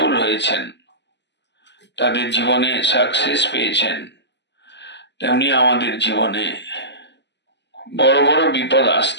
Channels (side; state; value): right; late; 0.51 ms